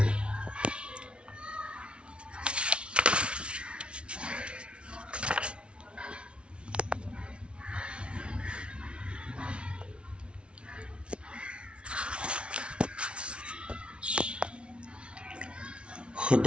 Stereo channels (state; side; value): late; left; 0.059 ms